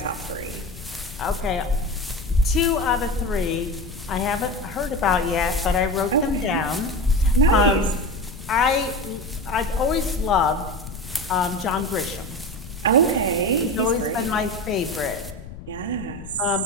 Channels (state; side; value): noise; left; rumble, 14 dB below the sound